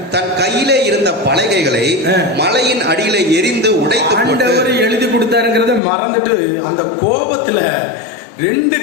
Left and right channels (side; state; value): right; drops out; at 5.8 s